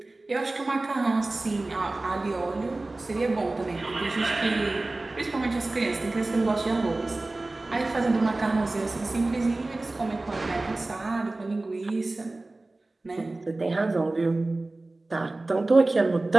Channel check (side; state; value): left; quieter; 3.0 dB